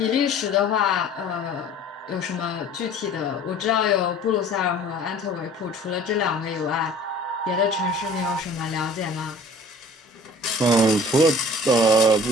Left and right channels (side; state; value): both; normal; correlation 0.48